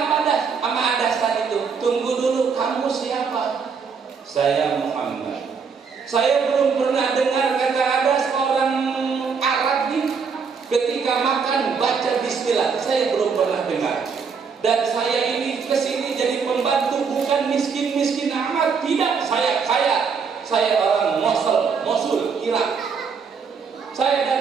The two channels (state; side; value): quieter; left; 5.8 dB